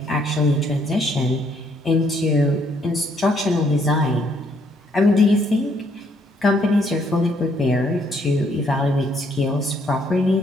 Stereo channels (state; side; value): normal; both; correlation 0.69